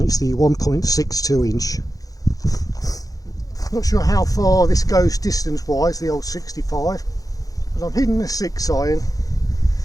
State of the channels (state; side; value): late; right; 0.17 ms